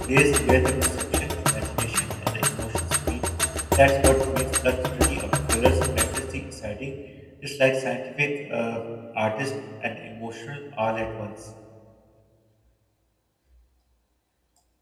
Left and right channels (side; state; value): both; identical; correlation 1.00